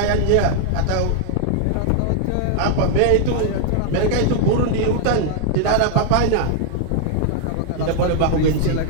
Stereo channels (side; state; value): both; different; correlation -0.01